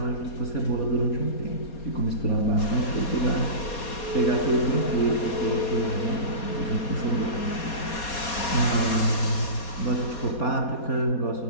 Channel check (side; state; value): right; late; 4.2 ms